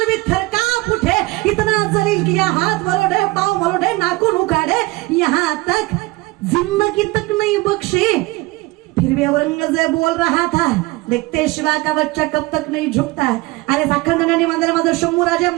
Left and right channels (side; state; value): left; quieter; 21.5 dB